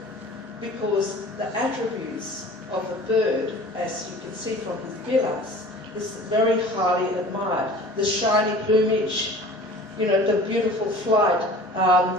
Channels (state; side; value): normal; both; correlation 0.43